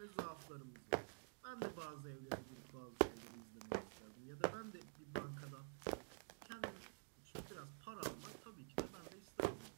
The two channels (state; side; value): silent; left; digital silence